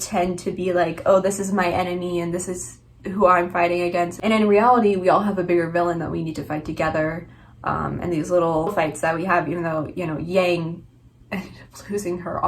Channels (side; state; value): both; identical; correlation 1.00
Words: to be like, oh, this is my enemy and this is who I'm fighting against. And in reality, we all have a bigger villain that we need to fight together. And these little fights that we have, even though, you know, Yang ended up losing her